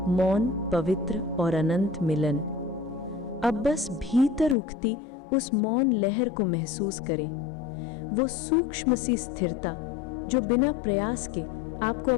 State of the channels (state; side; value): drops out; right; at 4.5 s